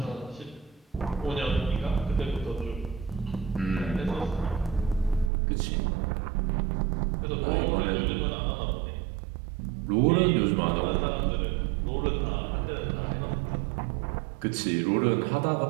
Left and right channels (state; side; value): drops out; left; at 5.3 s